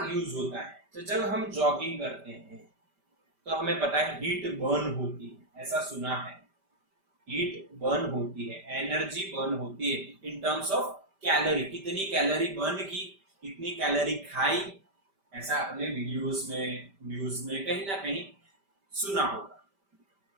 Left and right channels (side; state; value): left; late; 5.1 ms